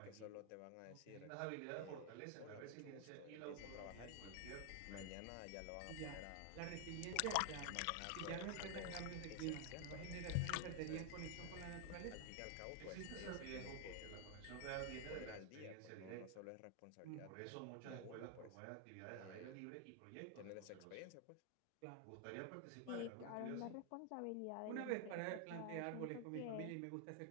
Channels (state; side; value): different; both; correlation 0.00